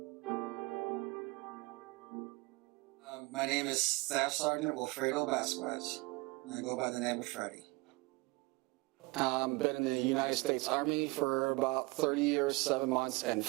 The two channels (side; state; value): left; quieter; 25.2 dB